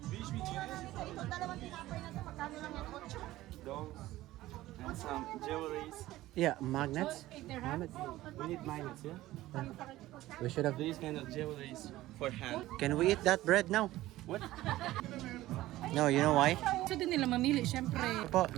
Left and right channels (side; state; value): left; quieter; 16.2 dB